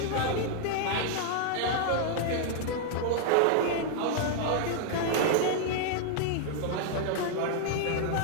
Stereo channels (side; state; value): both; different; correlation -0.01